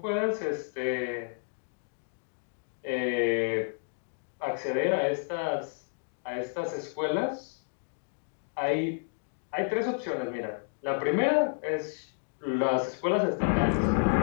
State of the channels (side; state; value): right; silent; digital silence